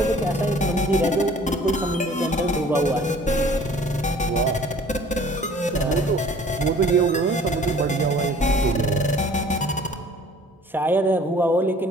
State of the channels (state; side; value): normal; both; correlation 0.51